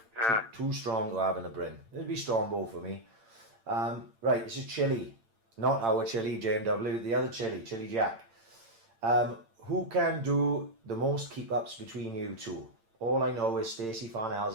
Yeah. Too strong to have in a Bryn. It'd be Strongbow for me. Right, this is Chili. Not our Chili, JMW, the other Chili, Chili Jack. Who can do the most keep-ups between you two? All I know is Stacey Farnell's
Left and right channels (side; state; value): left; late; 8.8 ms